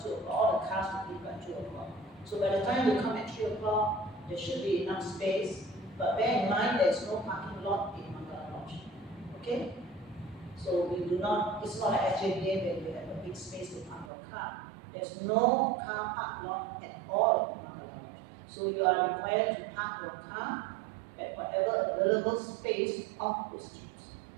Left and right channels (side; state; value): left; drops out; at 14.1 s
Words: 2 o'clock. All the cars will leave by 2 o'clock. So by the time you come at 3 o'clock, there should be enough space. But bear in mind there is no parking lot in Mangala Lodge. Okay? So we do not, it's not like SJDA where you have a big space to park your car. There's no car park lot at all. So you are required to park your car at whatever available space off the streets.